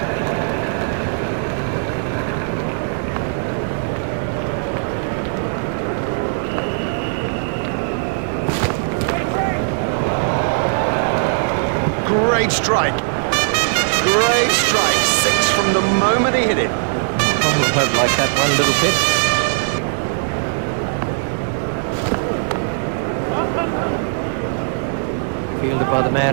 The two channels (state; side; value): silent; left; digital silence